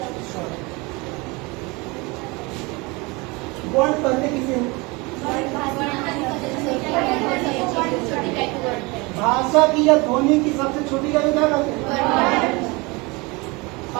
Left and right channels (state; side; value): quieter; left; 26.0 dB